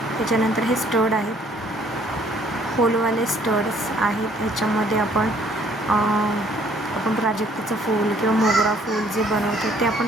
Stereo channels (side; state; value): both; normal; correlation 0.61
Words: त्याच्यानंतर हे स्टड आहेत, होलवाले स्टड्स आहेत. ह्याच्यामध्ये आपण प्राजक्ताचं फूल किंवा मोगरा फूल जे बनवतो ते आपण